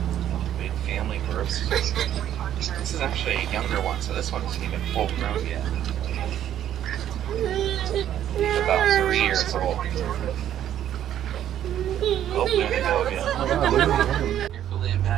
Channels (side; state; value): left; quieter; 11.0 dB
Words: Big family groups. This is actually a younger one, so this one isn't even full grown yet. He's about 3 years old. Oh, there they go again. Carefully